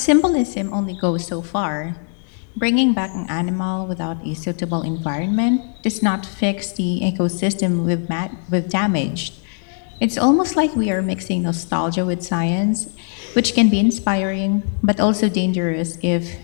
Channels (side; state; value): right; silent; 55 dB below the other